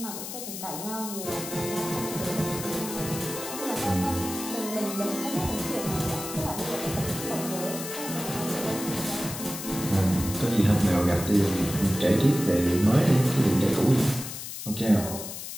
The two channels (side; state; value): left; noise; hiss, 8 dB below the sound